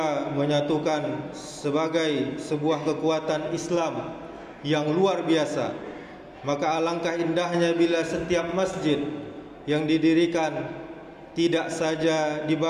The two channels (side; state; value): both; identical; correlation 1.00